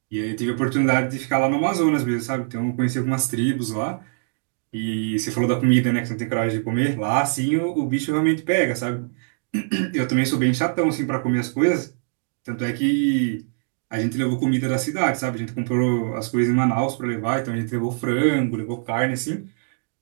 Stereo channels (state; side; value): silent; left; digital silence